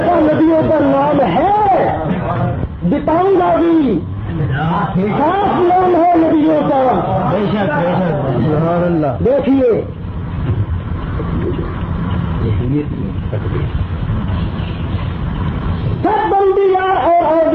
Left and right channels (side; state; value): both; identical; correlation 1.00